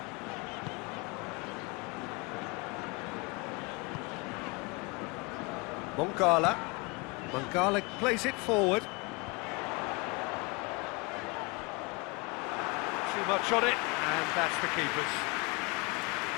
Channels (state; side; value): quieter; right; 28.0 dB